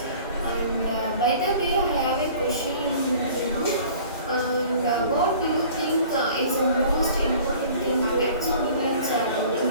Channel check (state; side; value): inverted; both; correlation -0.48